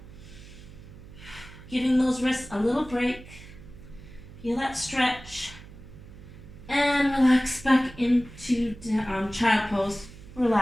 Giving those wrists a little break. Feel that stretch. And relax back into child pose.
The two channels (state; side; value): noise; right; hum, 17 dB below the sound